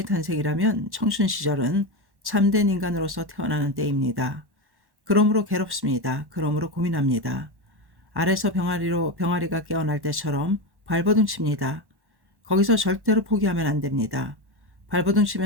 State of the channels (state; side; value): late; left; 1.1 ms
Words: 탄생이라면 청춘 시절은 참된 인간으로서 태어나는 때입니다. 그러므로 괴롭습니다. 그러므로 고민합니다. 알에서 병아리가 깨어날 때처럼 발버둥 칩니다. 거기서 절대로 포기하면 안 됩니다. 발버둥